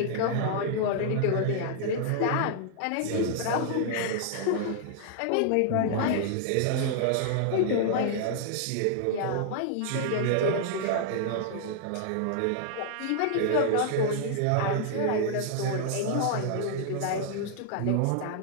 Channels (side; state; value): both; different; correlation -0.01